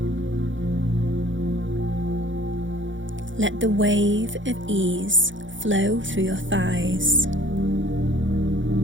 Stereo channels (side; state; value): left; late; 0.56 ms